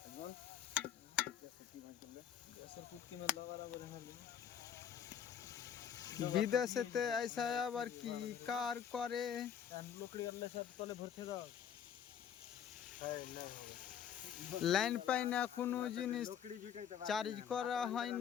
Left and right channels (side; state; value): right; quieter; 8.7 dB